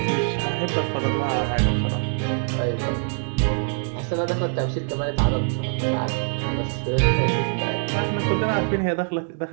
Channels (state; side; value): silent; left; 60 dB below the other